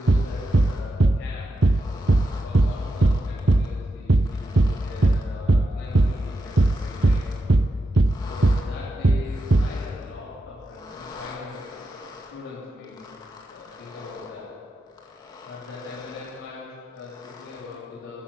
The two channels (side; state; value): both; normal; correlation 0.88